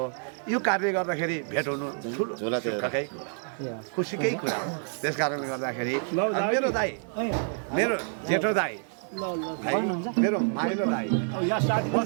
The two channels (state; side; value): silent; left; 59 dB below the other